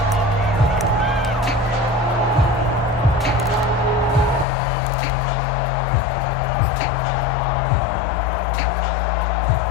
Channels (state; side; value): drops out; right; at 4.5 s